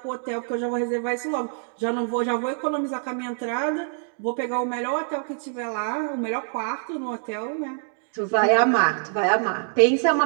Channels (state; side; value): silent; left; digital silence